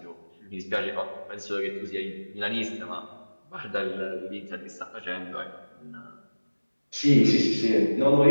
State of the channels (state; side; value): inverted; both; correlation -1.00